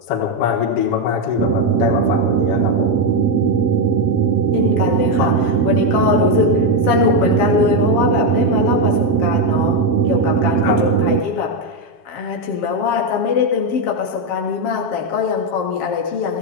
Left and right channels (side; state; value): right; late; 7.5 ms